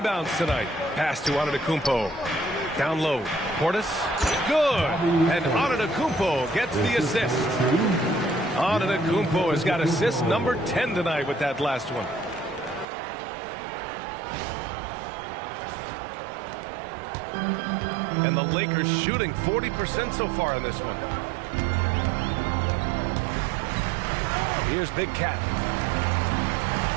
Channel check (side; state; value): left; drops out; at 12.9 s